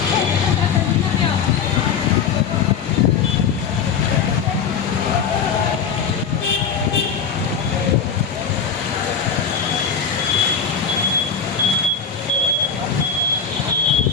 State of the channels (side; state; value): right; quieter; 6.5 dB